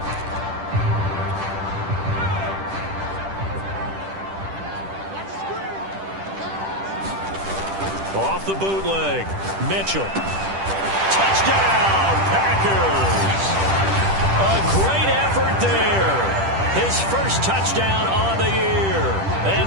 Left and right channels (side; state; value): left; late; 10 ms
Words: Off the bootleg. Mitchell. Touchdown, Packers. A great effort there. His first touchdown on the year.